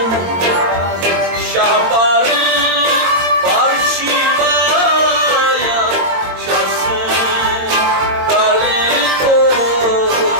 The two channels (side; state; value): left; late; 22 ms